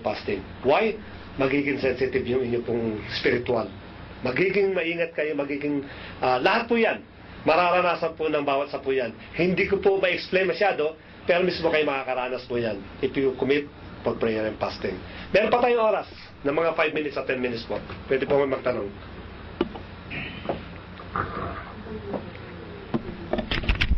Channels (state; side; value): identical; both; correlation 1.00